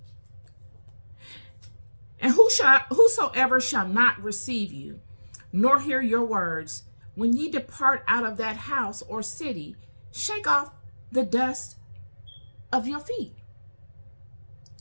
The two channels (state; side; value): inverted; both; correlation -1.00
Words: And whosoever shall not receive you, nor hear your words, when ye depart out of that house or city, shake off the dust of your feet.